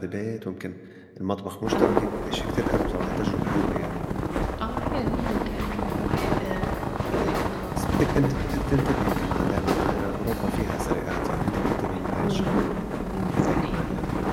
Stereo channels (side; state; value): both; identical; correlation 1.00